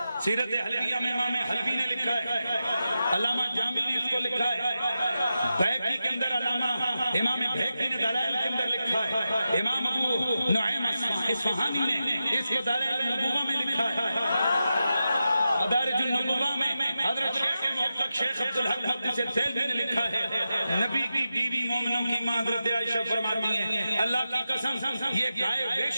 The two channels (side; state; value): both; inverted; correlation -0.90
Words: سیرت حلویہ میں امام حلوی نے لکھا ہے علامہ جامی نے اس کو لکھا ہے بیہقی کے اندر علامہ امام بیہقی نے دلائل کے اندر لکھا ہے امام ابو نعیم اصفہانی نے اس کو دلائل النبوہ میں لکھا ہے مدارج النبوہ میں حضرت شیخ محقق شیخ عبدالحق محدث دہلوی نے لکھا ہے نبی کی بیوی مومنوں کی ماں حضرت عائشہ فرماتی ہیں اللہ کی قسم یہ گائے